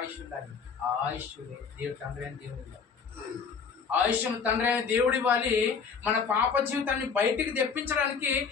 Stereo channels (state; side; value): quieter; right; 5.8 dB